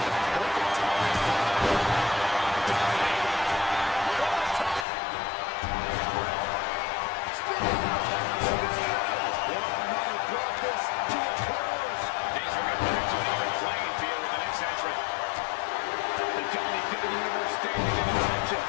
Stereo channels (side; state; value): right; drops out; at 4.9 s